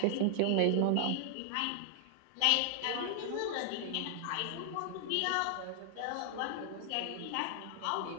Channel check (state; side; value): different; both; correlation 0.00